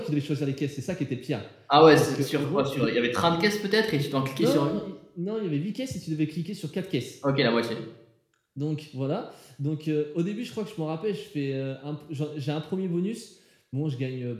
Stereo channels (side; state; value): both; identical; correlation 1.00